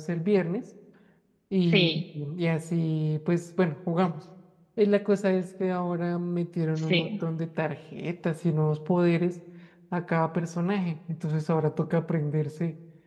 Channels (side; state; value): both; identical; correlation 1.00